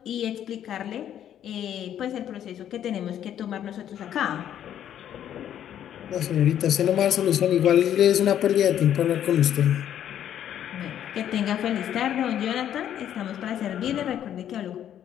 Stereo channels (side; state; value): right; quieter; 10.4 dB